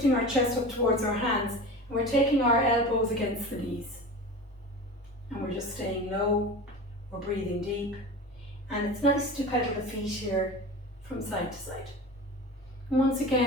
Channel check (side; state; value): both; normal; correlation 0.32